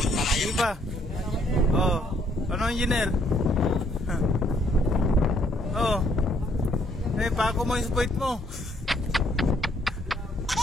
Sige pa. Oh, ano, engineer? Oh. Eh, pako mo yung spoit mo.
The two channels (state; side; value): normal; both; correlation 0.68